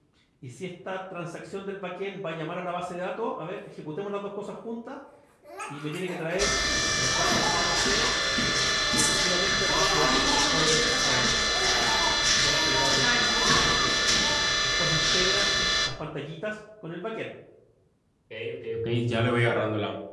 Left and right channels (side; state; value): both; identical; correlation 1.00